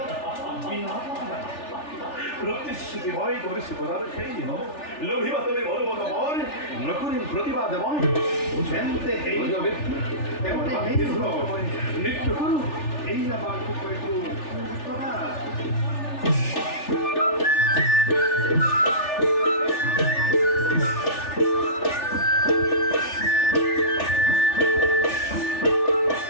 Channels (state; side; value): late; right; 3.4 ms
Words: প্রতিশ্রুতি হয় করেছি প্রদান সেই দিন লোভিবা তুমি বলবত মন নকুরি প্রতিবাদ মন বুঝেনতে এই নৃত্য করু এই না বাক্য কইতু প্রদান